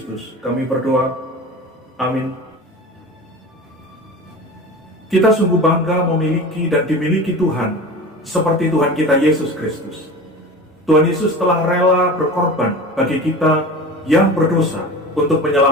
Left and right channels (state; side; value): normal; both; correlation 0.34